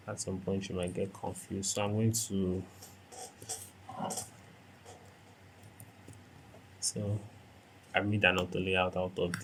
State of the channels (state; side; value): identical; both; correlation 1.00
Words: at some point you might get confused. So I'm going to I made an auto layout out of